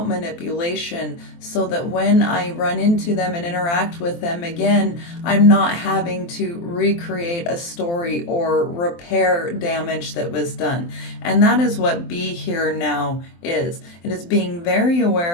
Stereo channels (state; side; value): late; right; 23 ms